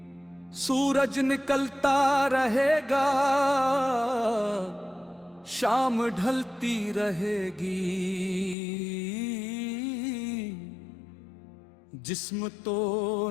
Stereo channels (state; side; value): drops out; right; at 8.6 s